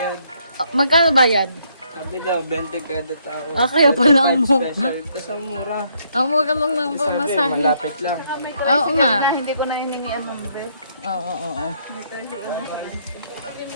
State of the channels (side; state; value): both; inverted; correlation -0.70